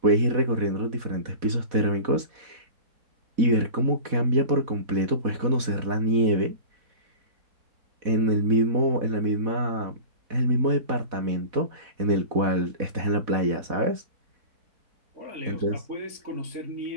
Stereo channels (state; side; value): late; left; 4.1 ms